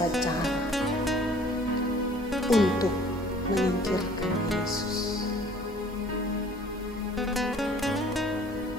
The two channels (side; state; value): both; normal; correlation 0.53